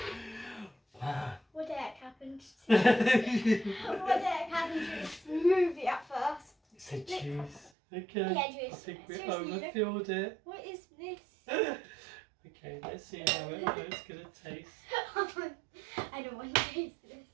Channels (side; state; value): left; drops out; at 7.7 s